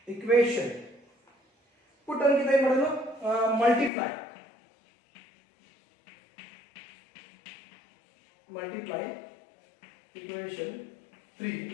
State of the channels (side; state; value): right; drops out; at 3.9 s